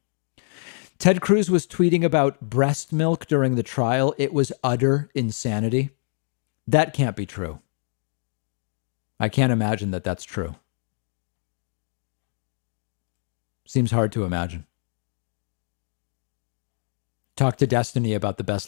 Ted Cruz was tweeting about breast milk during the trial. It was utter insanity. That can't be true. I can't imagine that that's true. Seems hard to imagine. Talk to Destiny about the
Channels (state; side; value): silent; right; digital silence